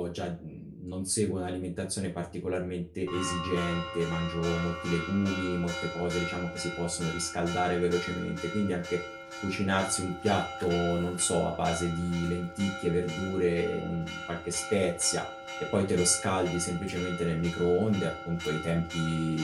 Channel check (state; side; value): identical; both; correlation 1.00